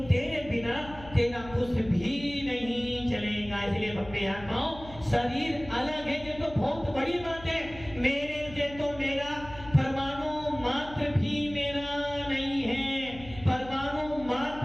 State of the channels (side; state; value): left; noise; hum, 17 dB below the sound